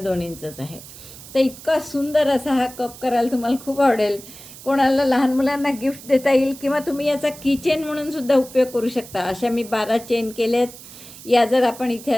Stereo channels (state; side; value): noise; right; hiss, 17 dB below the sound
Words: इंचच आहे. तर इतका सुंदर असा हा कप करायला तुम्हाला खूप आवडेल. कोणाला लहान मुलांना गिफ्ट देता येईल किंवा तुम्ही याचा किचेन म्हणून सुद्धा उपयोग करू शकता. अशा मी 12 चेन केल्यात. या जर आपण इथे